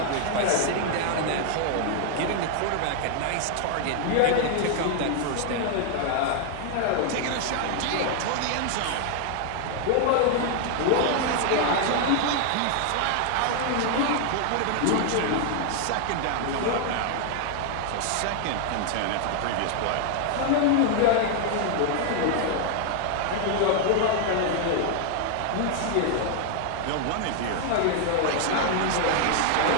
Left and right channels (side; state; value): both; different; correlation 0.00